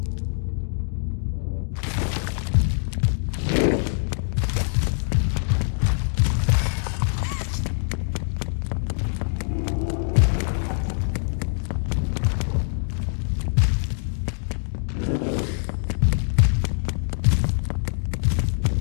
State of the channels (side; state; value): right; silent; digital silence